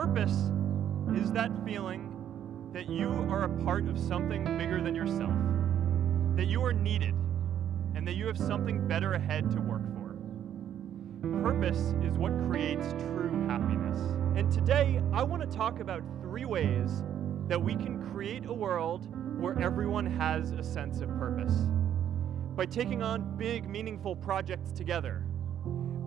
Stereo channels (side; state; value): left; quieter; 10.2 dB